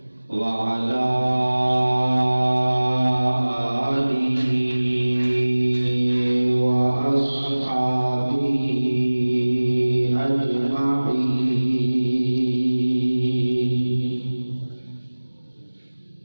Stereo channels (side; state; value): both; inverted; correlation -1.00